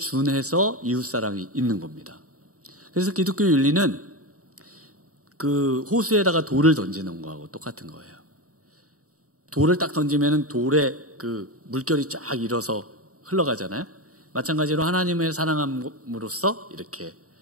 이웃사랑이 있는 겁니다. 그래서 기독교 윤리는 그 호수에다가 돌을 던지는 거하고 똑같은 거예요. 돌을 딱 던지면 돌에 그 물결이 쫙 일어서 흘러가잖아요. 마찬가지로 하나님의 사랑함으로써 이렇게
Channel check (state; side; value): late; left; 0.65 ms